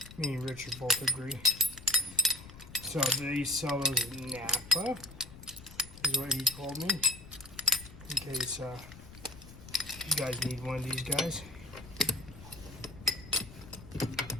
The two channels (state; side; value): noise; left; rumble, 17 dB below the sound